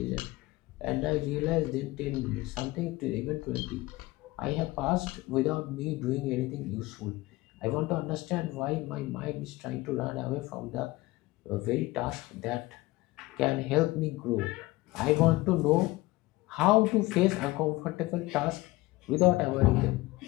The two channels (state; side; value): quieter; right; 20.0 dB